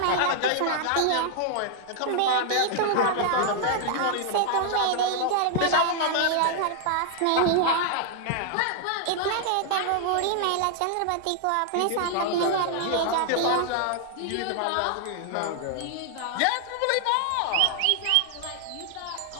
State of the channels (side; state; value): both; different; correlation 0.00